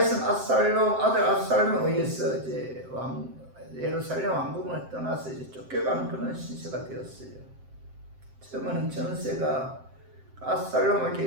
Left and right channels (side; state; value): left; late; 7.6 ms